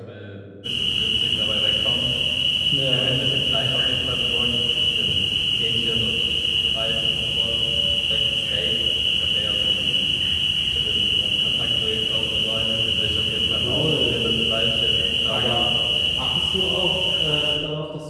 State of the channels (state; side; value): identical; both; correlation 1.00